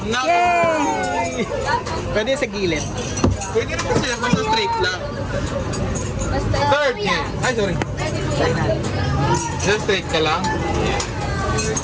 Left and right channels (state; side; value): identical; both; correlation 1.00